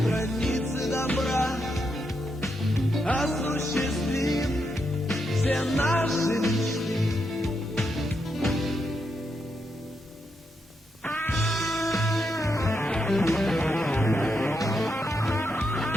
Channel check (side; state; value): both; normal; correlation 0.82